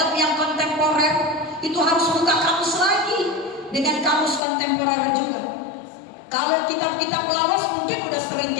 yang kontemporer itu harus buka kamus lagi dengan kamus kontemporer juga. Kalau kitab-kitab lawas mungkin udah sering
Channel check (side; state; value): right; drops out; at 4.4 s